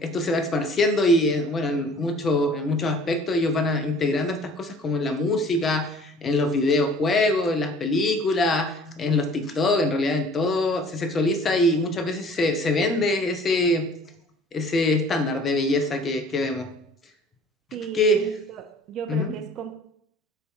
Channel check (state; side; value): normal; both; correlation 0.50